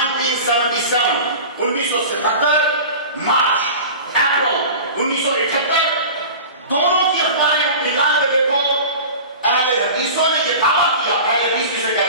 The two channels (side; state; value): both; inverted; correlation -0.35